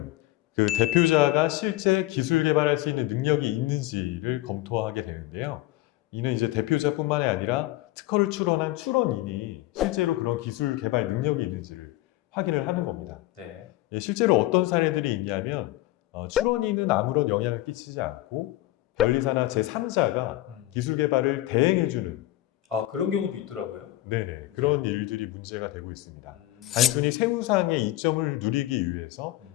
그 대표자가 실제 기술 개발할 수 있는 능력이 있는지를 검토하게 되는데요. 이는 이제 대표자뿐만이 아니라 특허를 출원한 출원인이 실제로 그런 기술 개발 능력이 있는지를 확인을 하는 겁니다. 네. 실제로 어떤 사례들이 있냐면 출원인은 아무런 영향을 끼치지 않고 변리사나 제3자가 기술 개발을 대행해주는 그런 경우도 있더라고요. 네네, 그런 일들이 문제가 되고 있습니다. 단순히 세무상의 이점을 누리기 위해서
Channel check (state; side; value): quieter; right; 16.7 dB